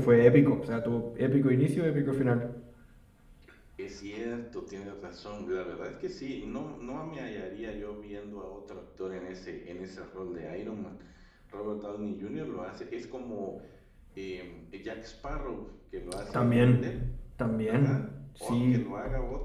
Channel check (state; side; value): identical; both; correlation 1.00